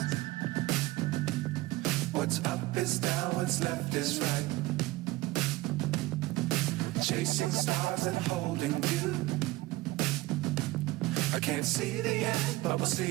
What's up is down, what's left is right. Chasing stars and holding you. I can't see the end, but we'll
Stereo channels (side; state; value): left; quieter; 19.1 dB